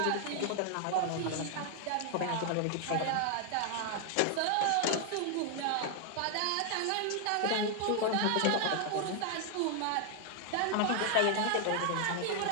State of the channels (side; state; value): both; different; correlation 0.00